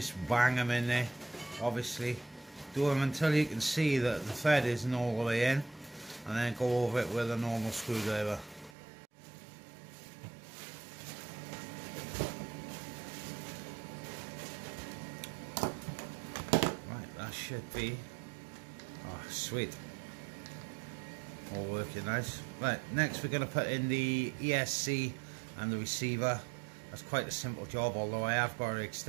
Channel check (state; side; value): drops out; left; at 8.8 s